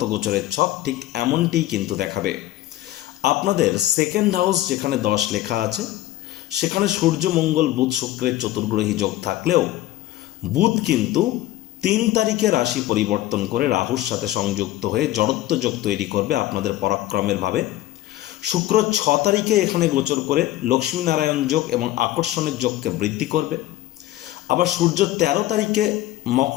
গোচরের ছক ঠিক এমনটিই কিন্তু দেখাবে। আপনাদের সেকেন্ড হাউস যেখানে 10 লেখা আছে সেখানে সূর্য, মঙ্গল, বুধ, শুক্রের চতুর্গ্রহী যোগ থাকলেও বুধ কিন্তু 3 তারিখে রাশি পরিবর্তন করে রাহুর সাথে সংযুক্ত হয়ে জড়ত্ব যোগ তৈরি করবে আপনাদের পরাক্রমের ভাবে। শুক্র 6 তারিখে এখানে গোচর করে লক্ষ্মীনারায়ণ যোগ এবং আকর্ষণের যোগকে বৃদ্ধি করবে। আবার সূর্য 13 তারিখে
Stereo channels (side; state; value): right; quieter; 15.0 dB